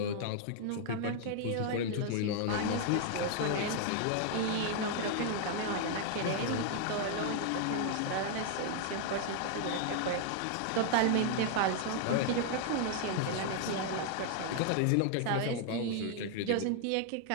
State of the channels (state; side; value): different; both; correlation 0.00